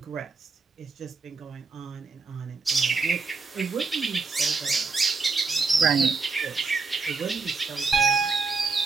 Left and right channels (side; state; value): left; quieter; 4.3 dB